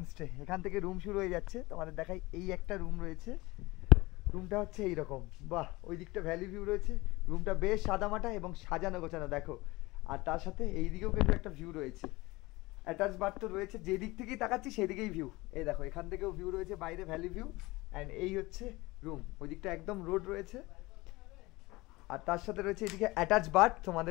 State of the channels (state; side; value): quieter; right; 21.5 dB